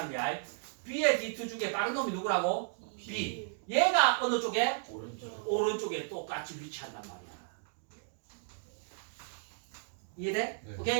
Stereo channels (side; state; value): left; silent; digital silence